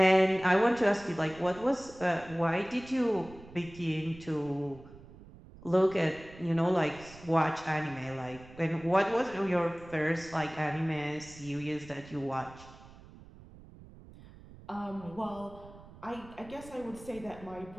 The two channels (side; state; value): right; noise; rumble, 19 dB below the sound